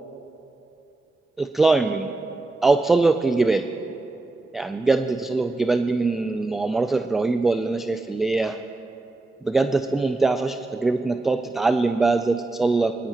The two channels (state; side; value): quieter; left; 3.1 dB